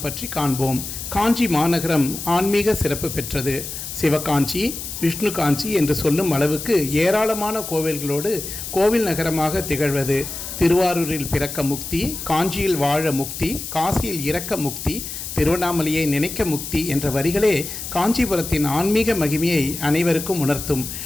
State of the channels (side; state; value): left; noise; hiss, 8 dB below the sound